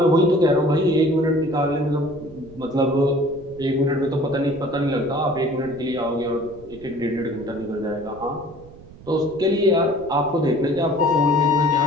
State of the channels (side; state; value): right; noise; rumble, 20 dB below the sound